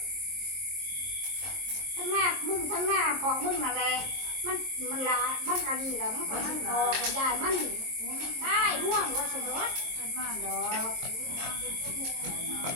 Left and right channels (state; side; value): late; left; 22 ms